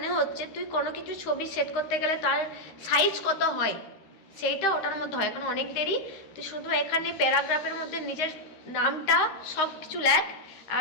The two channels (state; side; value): late; right; 13 ms